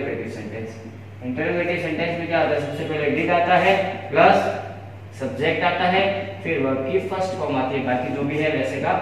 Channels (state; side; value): identical; both; correlation 1.00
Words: सेंटेंस। इंटरोगेटिव सेंटेंस में क्या होता है, सबसे पहले डिड आता है प्लस सब्जेक्ट आता है, फिर वर्ब की फर्स्ट फॉर्म आती है, बाकी जो भी है वैसे का